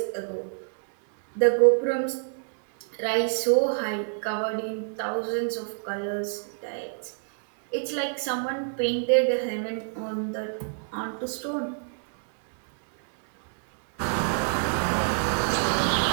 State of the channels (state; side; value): silent; left; digital silence